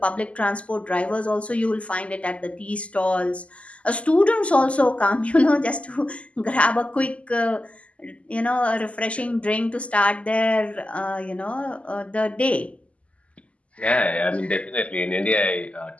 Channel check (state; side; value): late; right; 0.063 ms